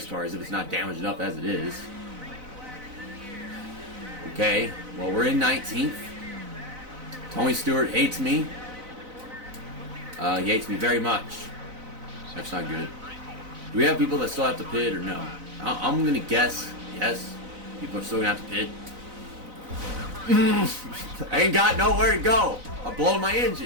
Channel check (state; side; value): late; left; 4.0 ms